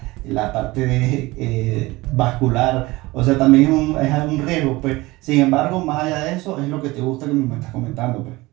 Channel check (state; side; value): quieter; left; 20.8 dB